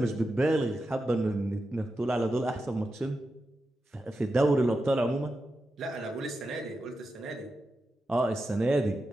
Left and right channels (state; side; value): normal; both; correlation 0.89